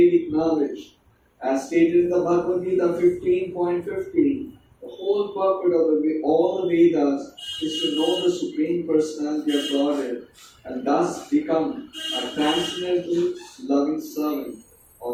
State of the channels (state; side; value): identical; both; correlation 1.00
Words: knowledge. As stated in the Bhagavad Gita 15.15, the whole purpose of all the Vedas is to know the Supreme Personality of Godhead and thus become a transcendental, loving servant